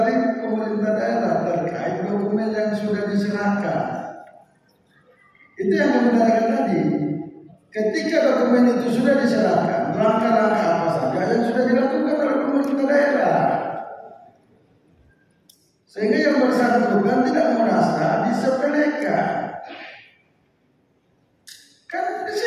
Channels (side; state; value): both; identical; correlation 1.00